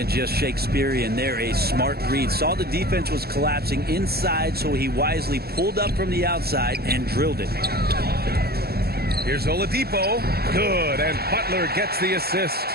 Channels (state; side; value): late; left; 0.46 ms